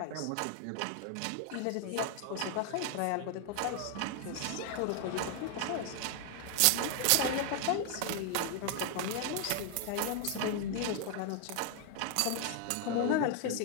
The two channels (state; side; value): different; both; correlation 0.00